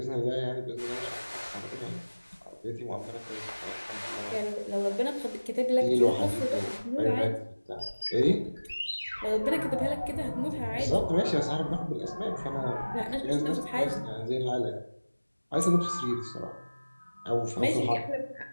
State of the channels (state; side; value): inverted; both; correlation -1.00